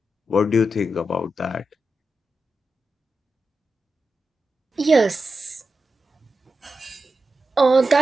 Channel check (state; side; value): normal; both; correlation 0.89